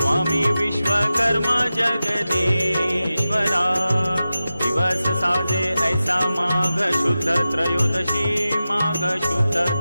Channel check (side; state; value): both; inverted; correlation -0.94